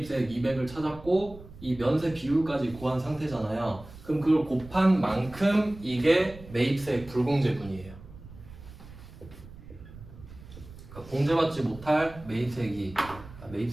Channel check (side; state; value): right; noise; rumble, 17 dB below the sound